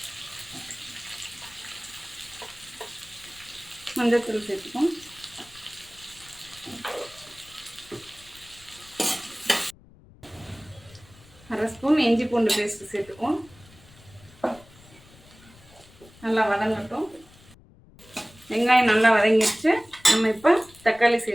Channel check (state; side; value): noise; left; rumble, 24 dB below the sound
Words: மஞ்சத்தூள் சேர்த்துக்கோம். அரை ஸ்பூன் இஞ்சி பூண்டு பேஸ்ட்டு சேர்த்துக்குவோம். நல்லா வதங்கட்டும். வெங்காயம் நல்லா வதங்கிடுச்சு. நம்ம இப்போ தக்காளி